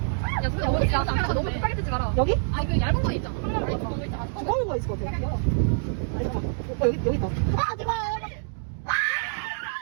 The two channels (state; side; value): silent; left; digital silence